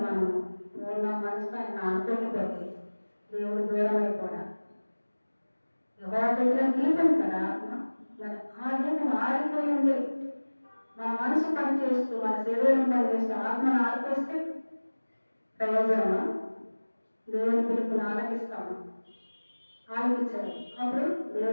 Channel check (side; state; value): both; inverted; correlation -1.00